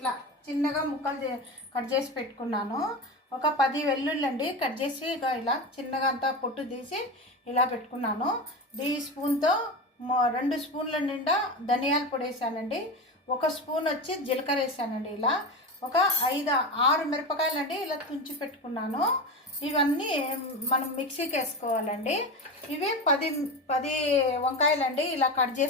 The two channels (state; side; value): normal; both; correlation 0.22